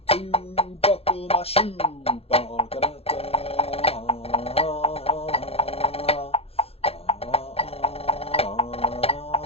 2, buckle my shoe.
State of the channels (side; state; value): right; late; 0.29 ms